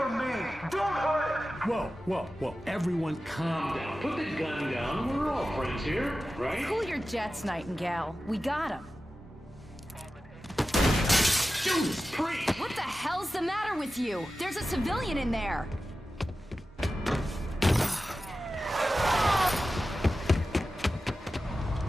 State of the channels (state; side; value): normal; both; correlation 0.94